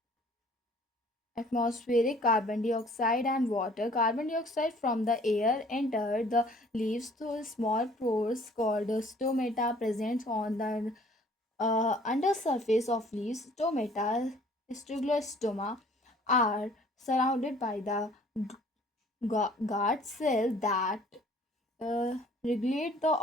atmospheric carbon dioxide and water. Carbon dioxide from the air enter the leaves through small pores called stomata present on the undersurface of leaves. Stomata, stoma, are surrounded by the guard cell that regulate the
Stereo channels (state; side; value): normal; both; correlation 0.55